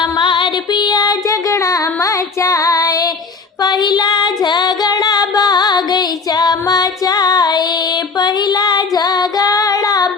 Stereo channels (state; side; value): quieter; right; 4.6 dB